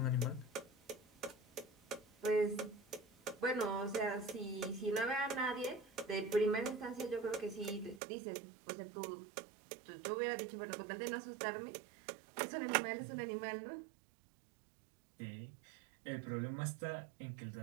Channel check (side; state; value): left; drops out; at 8.0 s